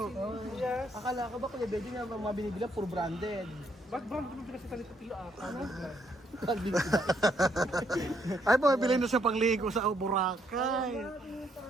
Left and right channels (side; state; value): both; normal; correlation 0.72